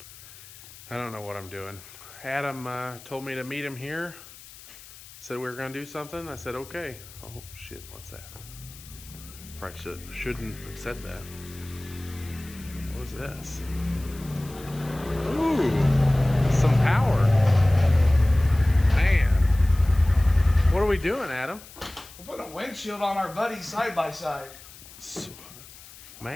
I don't know what I'm doing. Adam told me to meet him here. Said we were going to do something. I said, okay. Oh, shit. What's that? Probably shouldn't have said that. What was this? Ooh, some power. Man. What are we doing, Adam? We're putting a windshield on our buddy side by side.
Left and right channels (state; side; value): noise; left; hiss, 19 dB below the sound